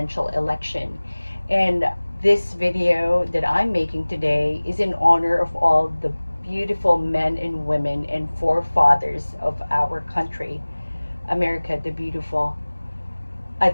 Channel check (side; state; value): both; inverted; correlation -1.00